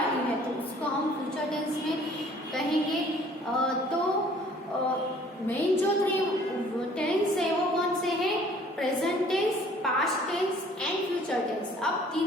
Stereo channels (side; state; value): both; normal; correlation 0.55